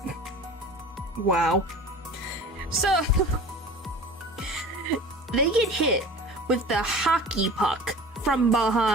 Wow. So, they get hit with the hockey puck from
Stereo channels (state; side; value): normal; both; correlation 0.40